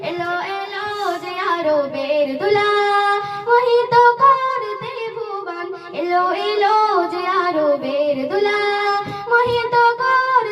এলো এলো যে আরবের দুলা মোহিত করতে ভুবন এলো এলো যে আরবের দুলা মোহিত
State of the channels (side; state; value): both; identical; correlation 1.00